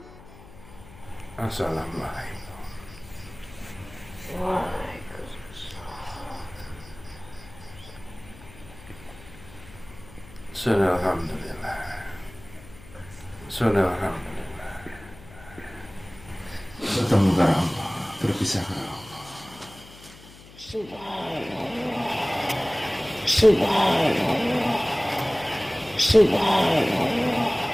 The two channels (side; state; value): left; noise; hum, 20 dB below the sound